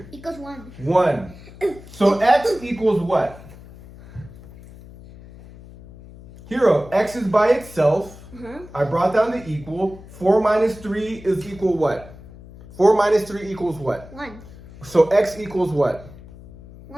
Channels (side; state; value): left; noise; hum, 18 dB below the sound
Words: Equals 1. 1. So x equals what? Hero, x is by itself. I brought down the equal. 4 minus 3 is equal what? 4 minus 3 equals what? 1. So x equals what?